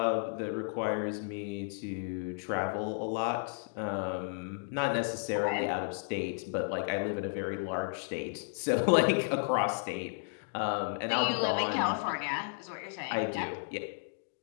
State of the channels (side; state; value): right; silent; digital silence